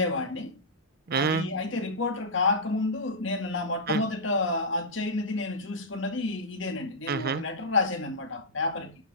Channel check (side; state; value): both; normal; correlation -0.11